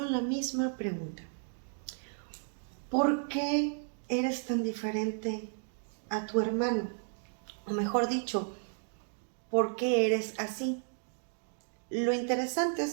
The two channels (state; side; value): silent; left; 55 dB below the other